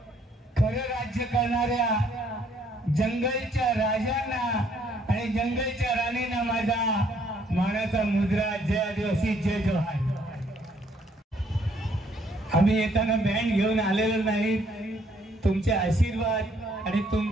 खरं राज्य करणाऱ्या जंगलच्या राजांना आणि जंगलच्या राणींना माझा मानाचा मुद्रा जय आदिवासी जय जोहार। आम्ही येताना बँड घेऊन आलेलो नाही, तुमचे आशीर्वाद आणि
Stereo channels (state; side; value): normal; both; correlation 0.66